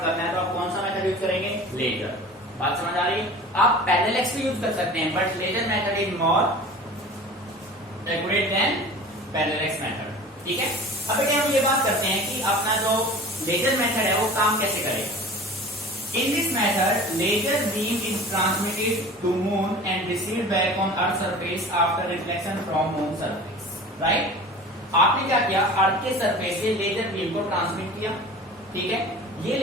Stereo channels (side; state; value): both; normal; correlation 0.39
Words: करना है तो आप कौन सा मेथड यूज करेंगे, लेजर। बात समझ आ रही है? आप पैरेलल एक्स भी यूज कर सकते हैं, but laser method is more accurate than parallax method, ठीक है। अब बेटे हम ये बात करते हैं कि अपना जो लेजर मेथड है वो काम कैसे करेगा। In this method laser beam is transmitted to moon and received back on earth surface after reflection from moon surface, right. आपने क्या किया, अर्थ के सरफेस से लेजर बीम को ट्रांसमिट किया, ठीक है। ये